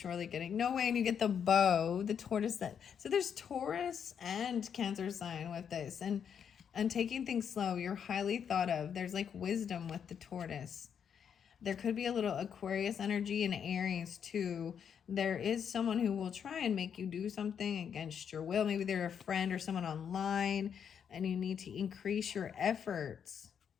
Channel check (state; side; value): quieter; right; 7.8 dB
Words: getting no way. And you get the bow, the tortoise. So there's Taurus and Cancer sign with this, and taking things slow. You're highly thought of. There's like wisdom with the tortoise. There could be a little Aquarius energy in Aries too. There is someone who will try and make you do something against your will. Maybe they're a friend or someone online, and you need to increase your efforts